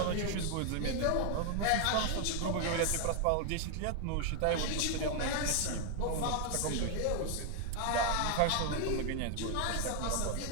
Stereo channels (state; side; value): different; both; correlation 0.00